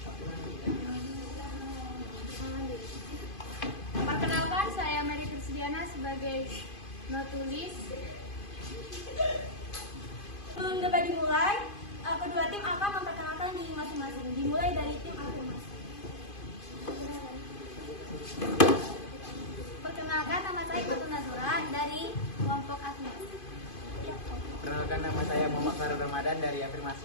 Perkenalkan, saya Mary Krisdiana sebagai notulis. Sebelum debat dimulai, kedua tim akan memperkenalkan diri masing-masing. Dimulai dari tim afirmasi. Perkenalkan, nama saya Fatul Nazura dari kelompok afirmasi. Perkenalkan, nama saya Muhammad Farul Ramadan dari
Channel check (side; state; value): right; late; 2.5 ms